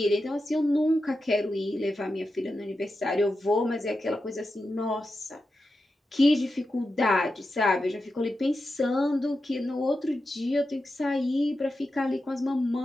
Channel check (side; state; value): both; normal; correlation 0.90